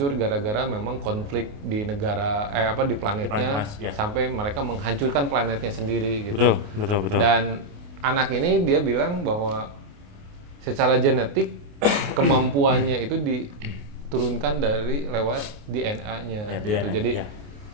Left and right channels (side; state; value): left; late; 28 ms